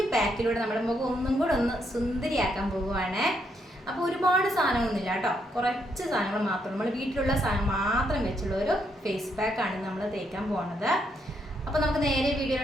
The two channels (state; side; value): normal; both; correlation 0.76